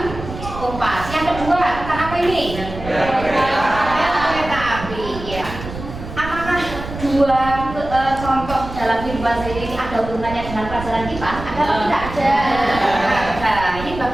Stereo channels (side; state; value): right; noise; rumble, 10 dB below the sound